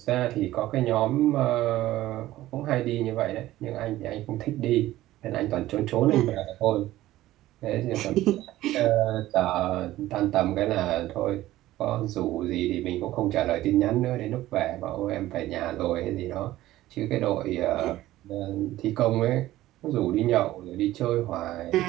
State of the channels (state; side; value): quieter; left; 15.5 dB